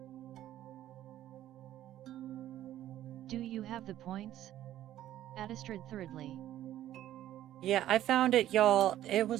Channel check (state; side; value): quieter; left; 12.8 dB